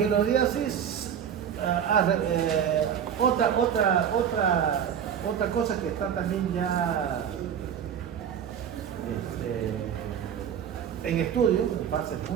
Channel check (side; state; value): left; quieter; 8.6 dB